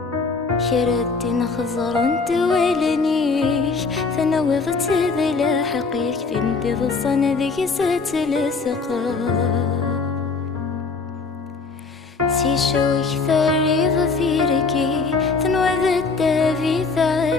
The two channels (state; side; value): quieter; right; 4.4 dB